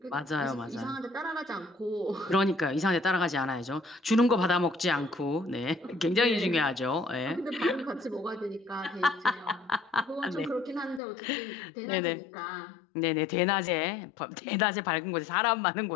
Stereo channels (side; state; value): right; drops out; at 11.0 s